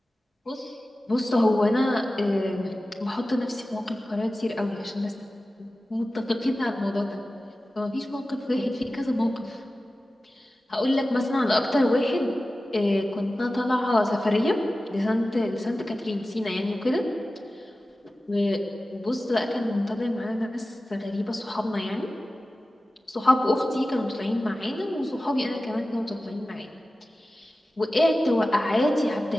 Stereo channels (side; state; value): both; normal; correlation 0.95